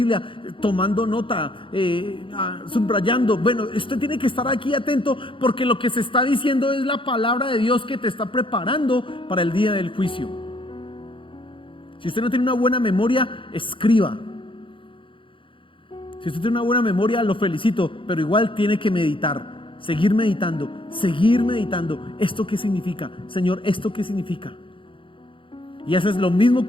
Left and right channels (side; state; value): right; late; 0.25 ms